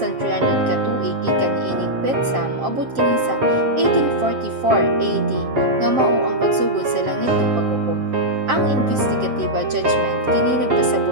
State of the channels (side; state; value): left; late; 7.5 ms